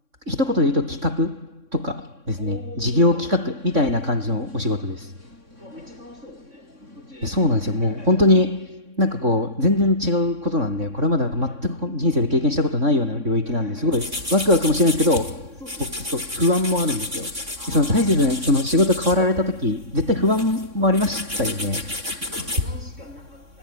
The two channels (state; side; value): late; left; 3.6 ms